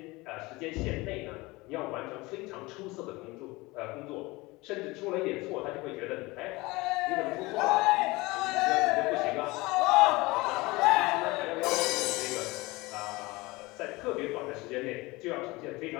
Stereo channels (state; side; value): quieter; right; 22.3 dB